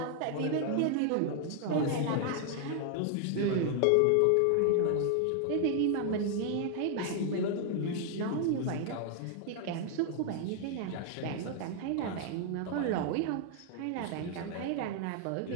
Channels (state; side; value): different; both; correlation 0.00